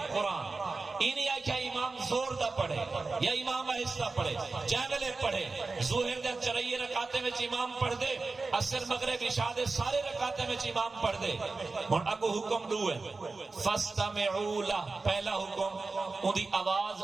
قرآن اینی آکھیا امام زور دا پڑھے یا امام آہستہ پڑھے جے ویلے پڑھے ظہر دے 4 رکعتیں وچ امام پڑھ دے عصر مغرب عشاء دے سارے رکعتیں وچ امام پڑھ دے ہن اگو حکم 2 ہے فاستمعوا له پہلا حکم اودی آواز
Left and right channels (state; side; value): quieter; left; 3.8 dB